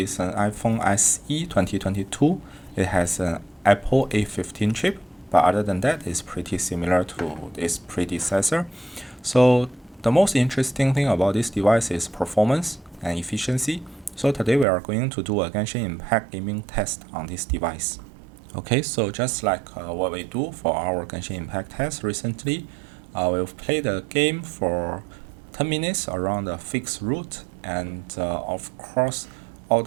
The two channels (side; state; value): left; drops out; at 14.7 s